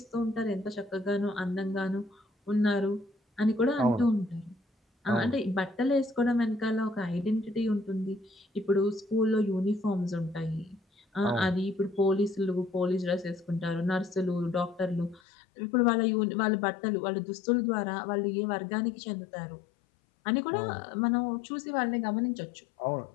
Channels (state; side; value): drops out; right; at 15.2 s